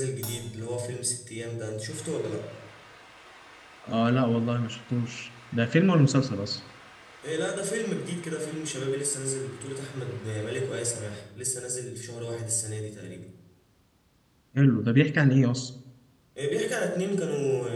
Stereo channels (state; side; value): identical; both; correlation 1.00